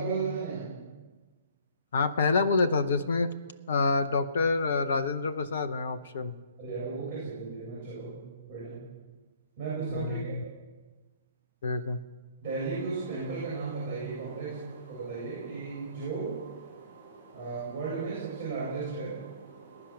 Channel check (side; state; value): both; inverted; correlation -0.60